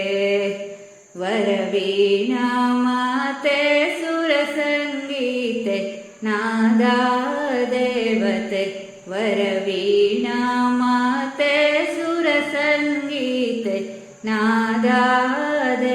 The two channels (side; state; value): both; identical; correlation 1.00